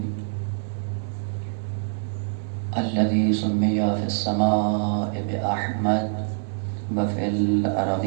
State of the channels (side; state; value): left; silent; digital silence